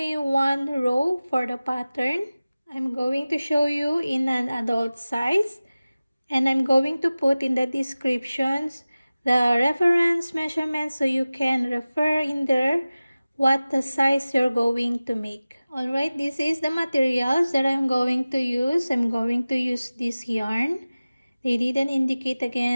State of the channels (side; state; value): both; inverted; correlation -0.97